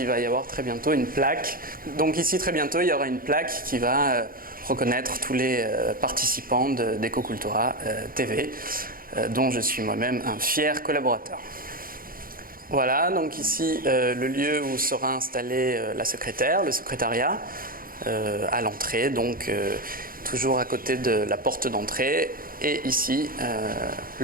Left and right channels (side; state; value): left; late; 0.42 ms